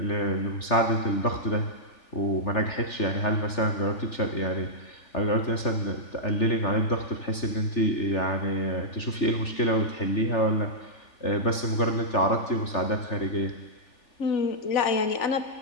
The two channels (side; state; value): right; late; 3.4 ms